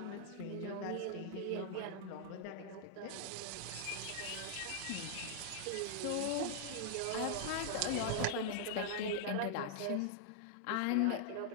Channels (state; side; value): different; both; correlation -0.01